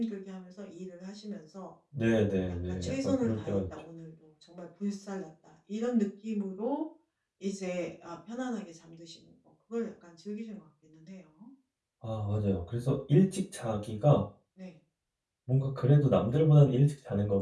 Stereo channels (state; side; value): identical; both; correlation 1.00